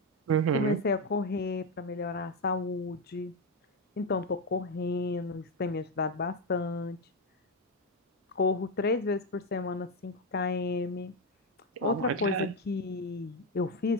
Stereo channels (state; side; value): normal; both; correlation 0.08